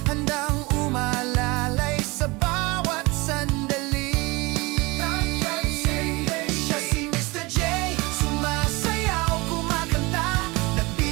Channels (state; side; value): quieter; left; 24.4 dB